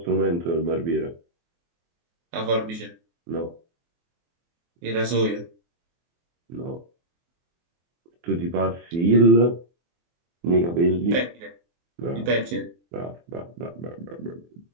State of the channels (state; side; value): late; left; 24 ms